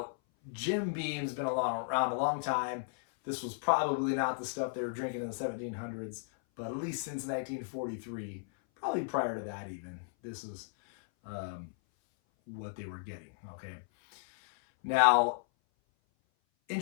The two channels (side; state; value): right; silent; 55 dB below the other